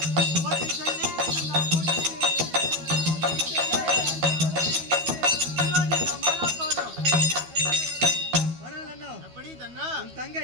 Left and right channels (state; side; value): late; left; 12 ms